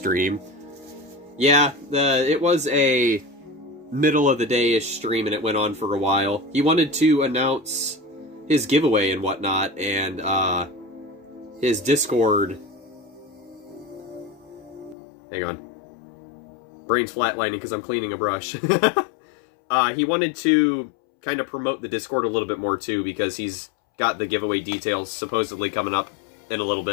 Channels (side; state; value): right; drops out; at 15.0 s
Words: Yeah, it was a middle of the day-ish stream and it went on for a while. He wanted to announce his giveaway and whatnot, and his Discord... Hang on. Brain's flatlining because I'm cleaning a brush. He wanted to kind of promote the Discord a little bit more too, because he's got the giveaway details supposedly coming up in a little